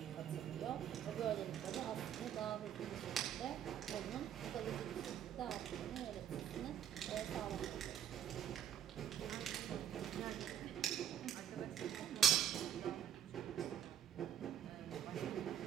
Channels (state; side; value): quieter; left; 9.8 dB